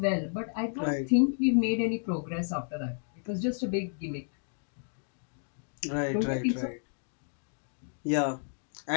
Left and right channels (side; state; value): right; silent; 57 dB below the other